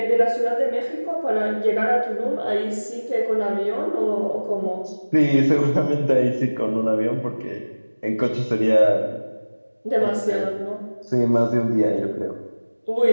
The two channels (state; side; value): inverted; both; correlation -1.00